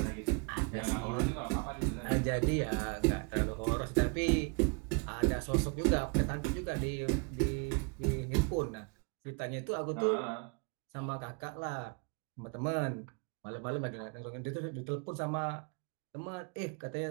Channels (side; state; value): left; quieter; 33.8 dB